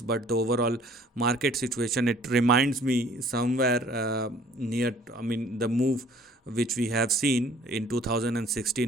but the overall market situation, it reminds me somewhere near, I mean, the move which we have seen in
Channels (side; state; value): both; normal; correlation 0.55